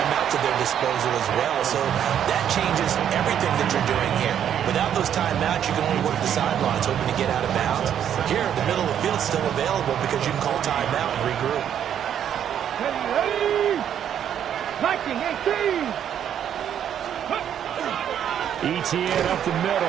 at their disposal as well. So that changes everything that you're doing here. Without those timeouts, you can only work the sidelines, hoping to get out of bounds. Here, the middle of the field is still available because you can call timeout and regroup. Ready, 19, 18. ETN up the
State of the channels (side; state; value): left; quieter; 9.5 dB